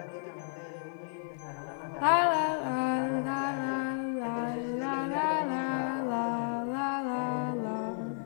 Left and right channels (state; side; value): silent; right; digital silence